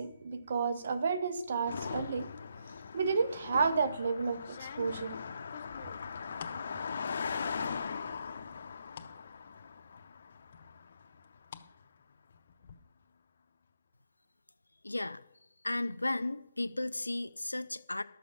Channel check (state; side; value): inverted; both; correlation -0.80